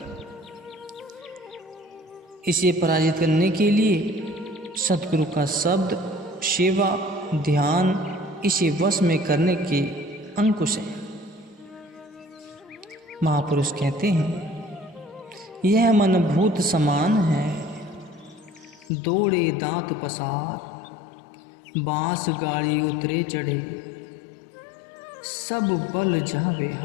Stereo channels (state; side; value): drops out; right; at 18.9 s